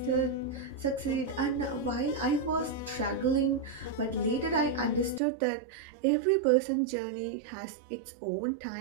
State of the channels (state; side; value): drops out; left; at 5.2 s